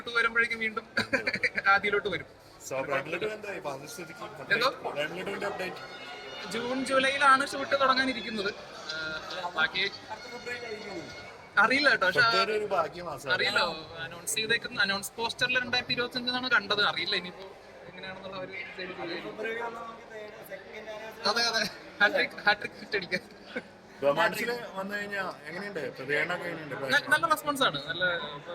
വരുമ്പോഴേക്കും വീണ്ടും ആദ്യയിലോട്ട് വരും. എന്തോ ജൂൺ ജൂലൈയിലാണ് ഷൂട്ട് തുടങ്ങാനിരിക്കുന്നത്. ബാക്കി അറിയില്ല കേട്ടോ. പക്ഷെ അറിയില്ല, അനൗൺസ് ചെയ്തേക്കുന്ന അനൗൺസ് പോസ്റ്ററിൽ 2025 കണ്ടത്. അറിയില്ല ഇനിയിപ്പോ എങ്ങനെയാണെന്നുള്ള ഒരു ഹാട്രിക് ഹിറ്റ് അടിക്കാൻ. നല്ല റെസ്പോൺസ് ആണ്. നല്ല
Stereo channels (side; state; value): both; identical; correlation 1.00